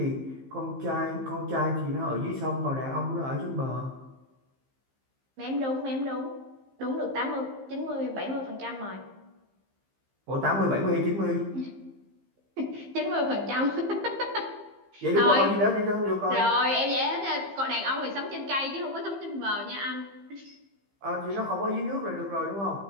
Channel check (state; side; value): late; left; 15 ms